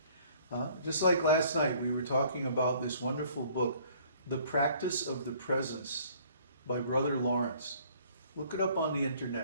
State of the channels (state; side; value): inverted; both; correlation -0.57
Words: Just like last night, we were talking about this wonderful book, The Practice of the Presence by Brother Lawrence. Look it up on the